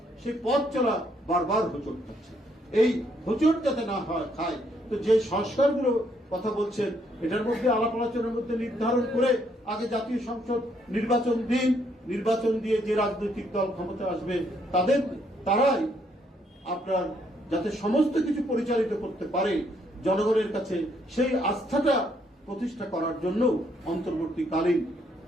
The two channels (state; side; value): normal; both; correlation 0.71